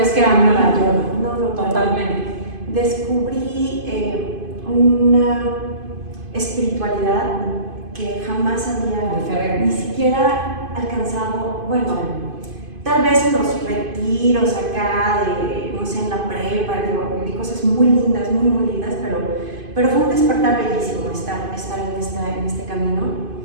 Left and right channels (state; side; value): late; left; 2.5 ms